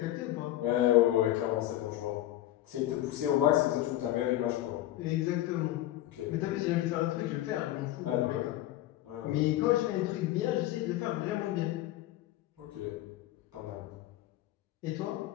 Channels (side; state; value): right; quieter; 14.6 dB